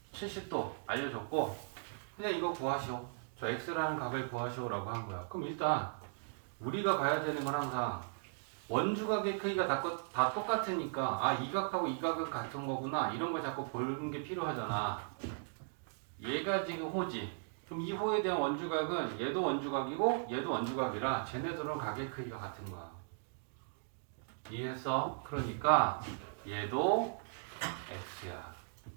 70도 알려줬고 그냥 이거 구하시오. 저 X라는 각을 구하시오라고 한 거야. 그럼 일단 우리가 봐야 되는 건 항상 원주각의 크기가 다 똑같으니까 아, 이 각하고 이 각은 같은 거구나 이런 걸 자꾸 보는 게 필요하잖아. 얘가 지금 호지. 그럼 이 호에 대한 원주각은 얘도 원주각이고 얘도 원주각이라 쟤네들은 각의 크기가 같은 거야. 이해했어? 그러니까 얘도 X야.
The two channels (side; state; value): left; silent; digital silence